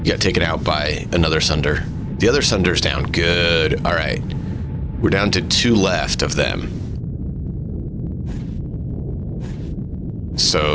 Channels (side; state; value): both; identical; correlation 1.00